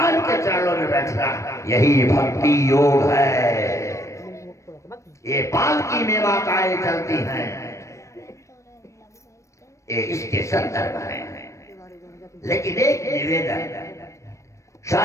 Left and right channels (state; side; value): late; right; 0.15 ms